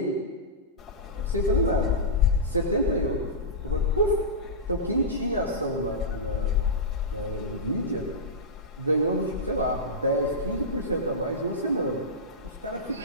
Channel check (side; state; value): both; normal; correlation -0.14